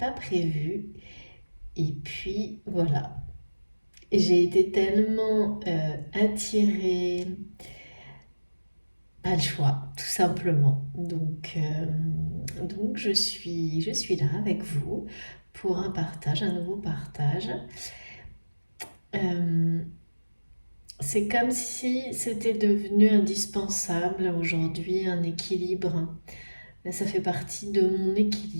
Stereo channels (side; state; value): both; inverted; correlation -1.00